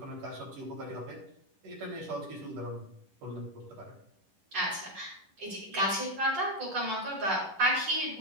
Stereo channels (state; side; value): late; left; 10 ms